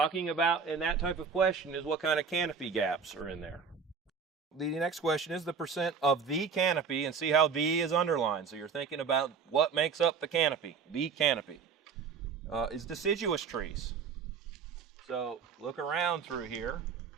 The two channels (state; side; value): quieter; left; 5.9 dB